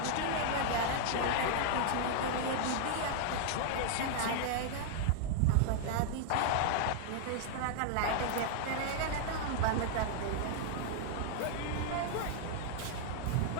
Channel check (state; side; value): different; both; correlation -0.01